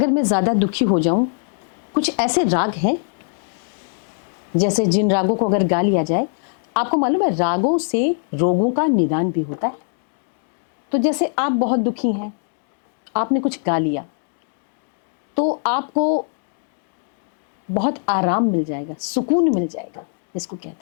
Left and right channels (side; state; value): right; silent; digital silence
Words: मैं ज़्यादा दुखी हो जाऊं, कुछ ऐसे राग हैं जैसे जिन रागों को अगर गा लिया जाए, आपको मालूम है रागों से रोगों का निदान भी होता है। तो जैसे आप बहुत दुखी हैं, आपने कुछ गा लिया तो आपको बहुत आराम मिल जाएगा, सुकून मिल जाएगा, इसको